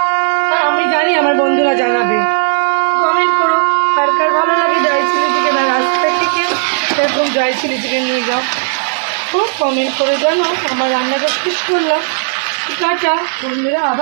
আর আমি জানি আমার বন্ধুরা জানাবে। কমেন্ট করো কার কার ভালো লাগে ড্রাই চিলি চিকেন, আর রাস্তা থেকে এরকম ড্রাই চিলি চিকেন নিয়ে যাও। তো কমেন্ট করে জানো। আমার রান্নাটা শেষ করলাম। টাটা বন্ধুরা,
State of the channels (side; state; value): left; silent; digital silence